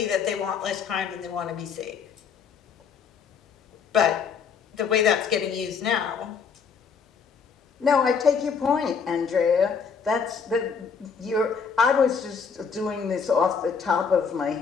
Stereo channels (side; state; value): right; quieter; 6.1 dB